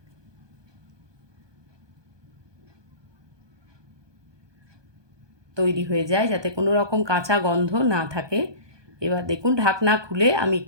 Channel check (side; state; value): left; late; 1.2 ms